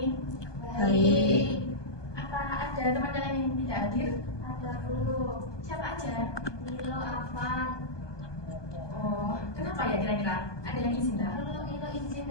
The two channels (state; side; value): late; right; 1.2 ms